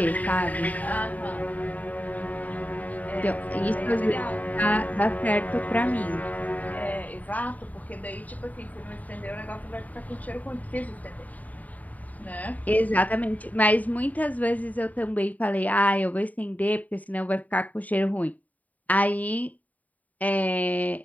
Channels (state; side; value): late; right; 0.074 ms